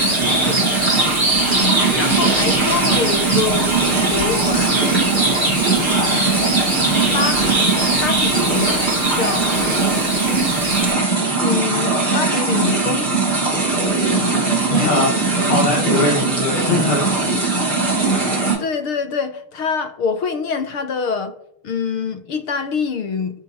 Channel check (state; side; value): late; right; 6.6 ms